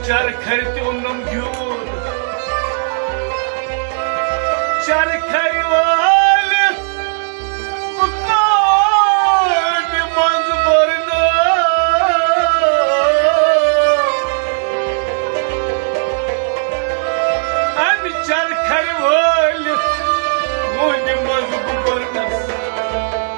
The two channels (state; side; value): silent; left; digital silence